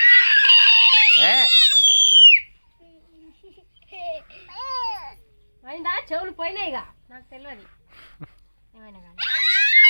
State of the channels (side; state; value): both; inverted; correlation -1.00